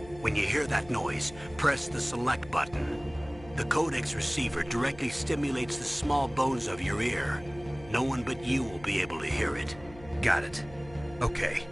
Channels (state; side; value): noise; left; hum, 19 dB below the sound